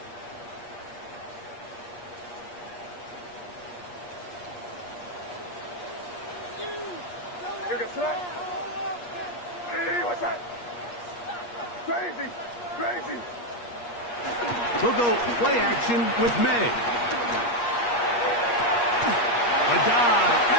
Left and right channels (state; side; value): late; right; 8.4 ms